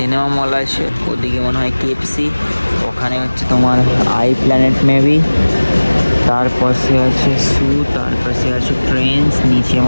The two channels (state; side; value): inverted; both; correlation -1.00